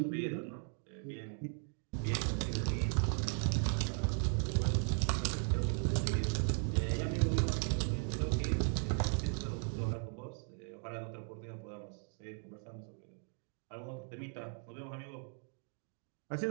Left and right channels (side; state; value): left; silent; 53 dB below the other